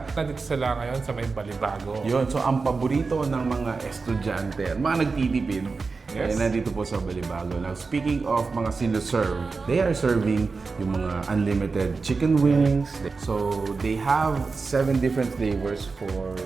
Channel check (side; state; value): left; quieter; 4.4 dB